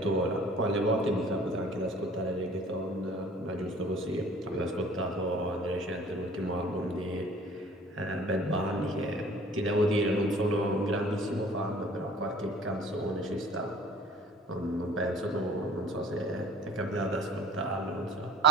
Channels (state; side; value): normal; both; correlation 0.50